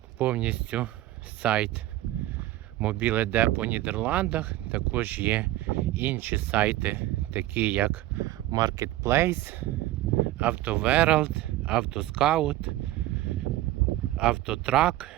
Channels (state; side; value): quieter; left; 15.9 dB